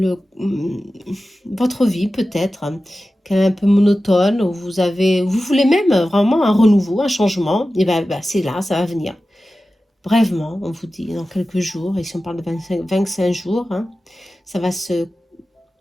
votre vie, peut-être, hein, qui est un peu monotone, où vous voulez même vraiment un renouveau, un changement. Et bien, c'est là, ça va venir. Brèvement, on vous dit, dans quelques jours, et si on parle de 25 jours, hein, ça va se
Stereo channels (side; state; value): both; normal; correlation 0.94